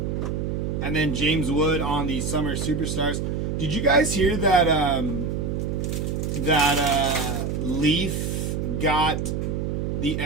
And then James Wood on the Summer Superstars. Did you guys hear that Leaf got the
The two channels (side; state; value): right; noise; hum, 1 dB below the sound